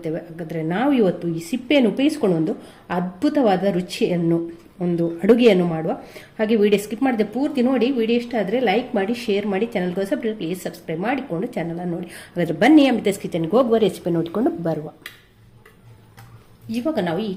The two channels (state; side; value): identical; both; correlation 1.00